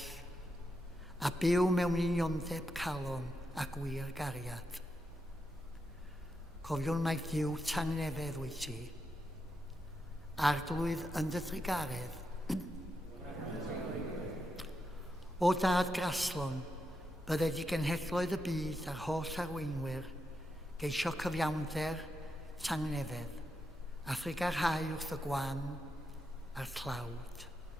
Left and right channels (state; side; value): normal; both; correlation 0.85